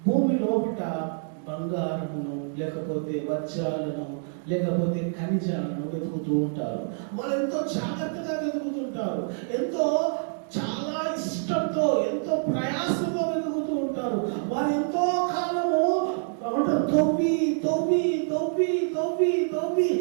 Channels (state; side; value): silent; left; digital silence